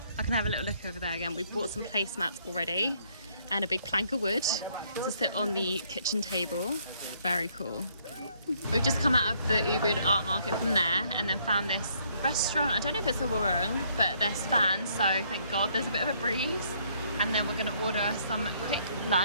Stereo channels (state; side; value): inverted; both; correlation -0.67